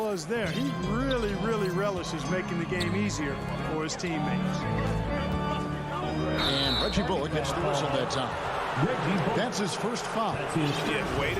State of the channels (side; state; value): both; identical; correlation 1.00